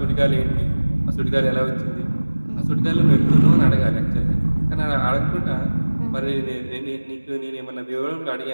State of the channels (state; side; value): inverted; both; correlation -1.00